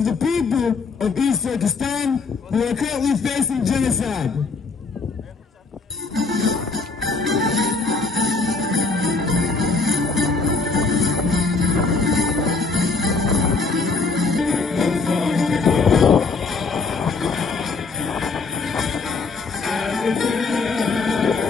the people of East Turkestan who are currently facing genocide.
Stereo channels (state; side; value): quieter; right; 4.3 dB